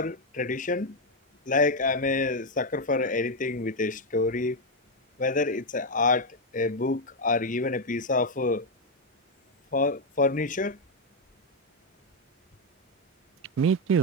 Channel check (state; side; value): normal; both; correlation 0.03